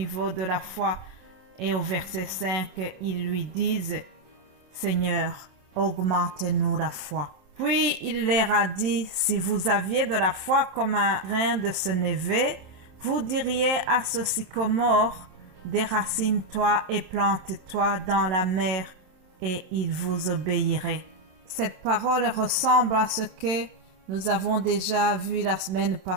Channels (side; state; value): left; late; 27 ms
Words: de la foi. Et au verset 5, ils lui disent, Seigneur, augmente-nous la foi. Puis il leur a dit, si vous aviez de la foi comme un grain de sénévé, vous diriez à ce sycomore, déracine-toi et plante-toi dans la mer, et il vous obéirait. Cette parole ressemble à ce que nous avons déjà vu la semaine